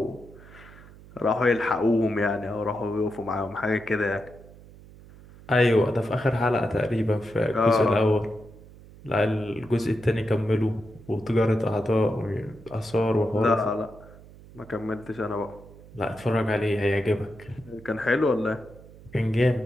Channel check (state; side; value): noise; right; hum, 21 dB below the sound